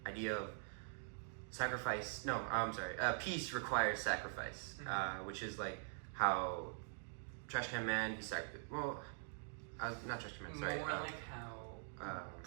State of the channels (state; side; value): silent; left; digital silence